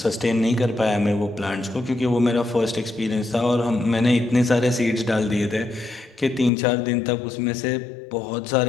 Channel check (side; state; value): right; drops out; at 6.5 s